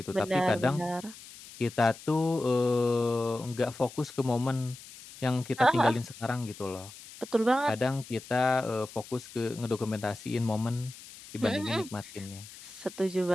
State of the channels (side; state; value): left; noise; hiss, 17 dB below the sound